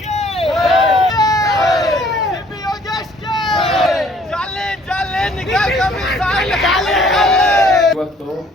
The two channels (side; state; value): both; normal; correlation 0.59